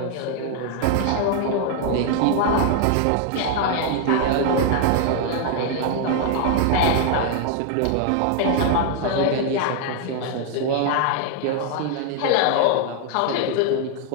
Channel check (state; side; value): different; both; correlation 0.00